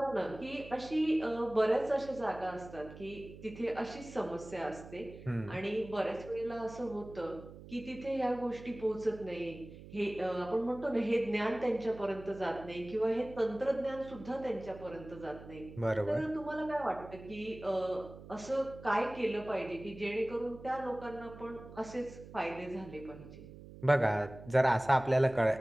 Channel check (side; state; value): right; noise; hum, 16 dB below the sound